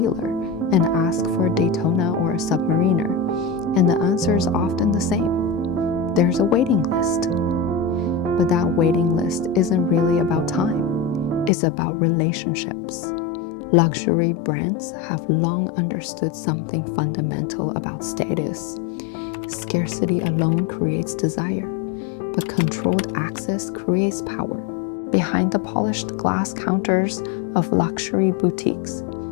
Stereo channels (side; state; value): right; drops out; at 11.5 s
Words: and ask for a Daytona or a Submariner, and the answer is often the same. There's a waiting list. But that waiting list isn't really about time. It's about relationships. Luxury brands have long understood something fundamental about status. Scarcity alone creates desire, but controlled access creates power. Behind the polished glass counters of luxury boutiques